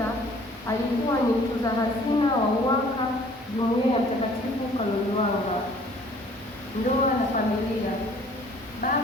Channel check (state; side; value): normal; both; correlation 0.55